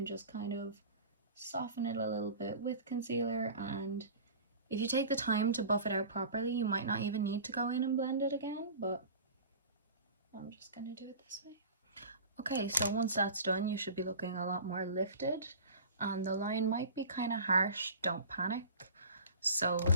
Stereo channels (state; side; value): inverted; both; correlation -0.39